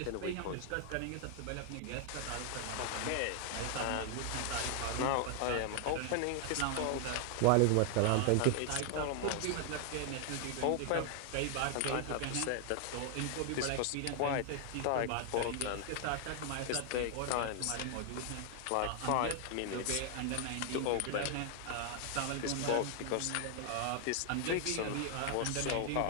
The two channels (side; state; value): both; different; correlation 0.00